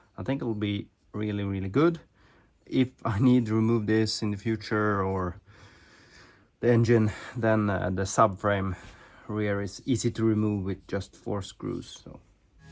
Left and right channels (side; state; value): both; identical; correlation 1.00